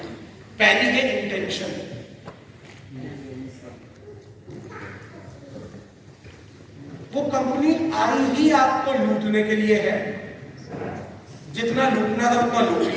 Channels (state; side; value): identical; both; correlation 1.00